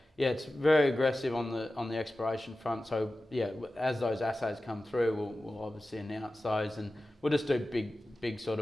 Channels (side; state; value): both; normal; correlation 0.95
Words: yeah, it's very aggressive on the exploration front. So yeah, as those assays come through, we'll obviously announce those, and we'll just do big sort